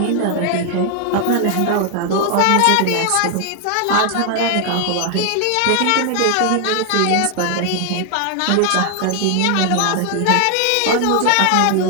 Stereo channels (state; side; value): different; both; correlation 0.00